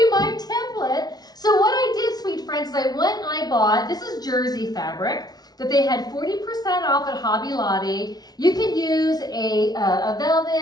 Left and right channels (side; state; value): right; late; 0.19 ms